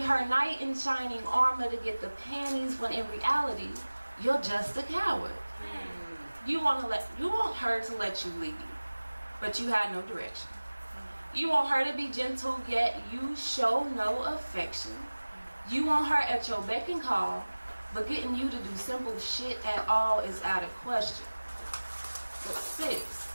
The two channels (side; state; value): both; inverted; correlation -1.00